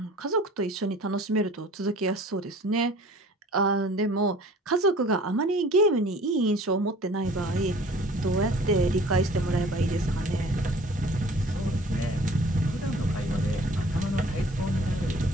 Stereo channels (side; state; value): both; normal; correlation 0.49